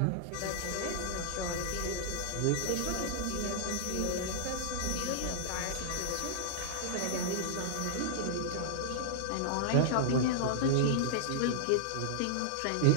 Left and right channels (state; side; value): different; both; correlation -0.02